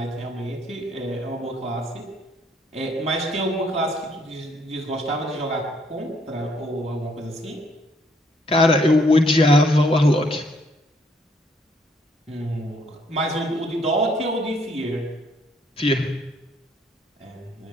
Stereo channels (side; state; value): both; normal; correlation 0.67